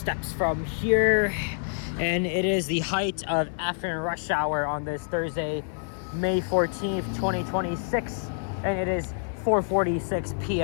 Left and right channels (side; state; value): right; silent; 58 dB below the other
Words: from here. And it is the height of afternoon rush hour on this Thursday, May 14th, 2026. And it is 4:46